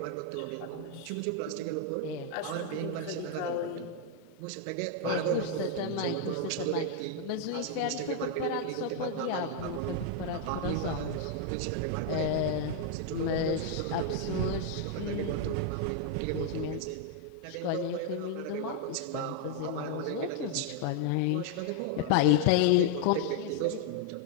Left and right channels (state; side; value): different; both; correlation 0.00